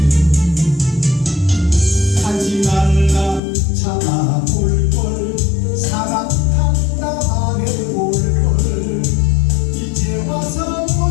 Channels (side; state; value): right; drops out; at 3.4 s